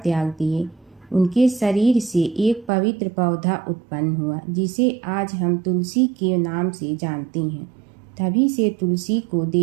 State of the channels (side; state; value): left; drops out; at 2.7 s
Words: दिए। उनके शरीर से एक पवित्र पौधा उत्पन्न हुआ जिसे आज हम तुलसी के नाम से जानते हैं। तभी से तुलसी को